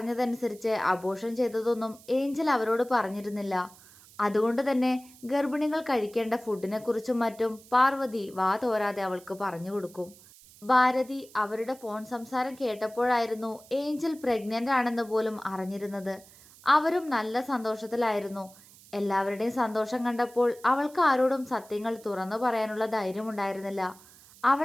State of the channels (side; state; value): right; noise; hiss, 23 dB below the sound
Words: അബോർഷൻ ചെയ്തതൊന്നും ഏഞ്ചൽ അവരോട് പറഞ്ഞിരുന്നില്ല. അതുകൊണ്ട് തന്നെ ഗർഭിണികൾ കഴിക്കേണ്ട ഫുഡിനെക്കുറിച്ചും മറ്റും പാർവതി വാ തോരാതെ അവൾക്ക് പറഞ്ഞു കൊടുക്കും. ഭാരതി അവരുടെ ഫോൺ സംസാരം കേട്ടപ്പോഴായിരുന്നു ഏഞ്ചൽ പ്രഗ്നന്റ് ആണെന്ന് പോലും അറിഞ്ഞിരുന്നത്. അവരും നല്ല സന്തോഷത്തിലായിരുന്നു. എല്ലാവരുടെയും സന്തോഷം കണ്ടപ്പോൾ അവൾക്ക് ആരോടും സത്യങ്ങൾ തുറന്നു പറയാനുള്ള ധൈര്യമുണ്ടായിരുന്നില്ല.